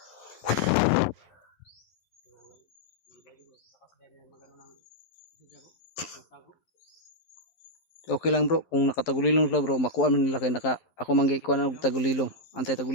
Takas din yung magano ng siya bro. Pantagog. Okay lang bro, kung nakatagulilong sila bro, makuha man nila kay ako manggay kuha og tagulilong. Antay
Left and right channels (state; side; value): late; right; 12 ms